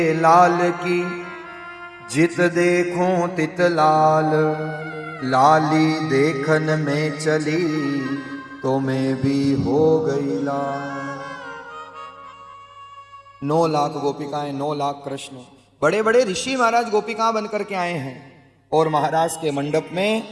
लाल की जित देखूं तित लाल, लाली देखन में चली तो मैं भी हो गई लाल। 9 लाख गोपिकाएं, 9 लाख कृष्ण। बड़े बड़े ऋषि महाराज गोपिकाएं बनकर के आए हैं। और महाराज के मंडप में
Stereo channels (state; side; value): identical; both; correlation 1.00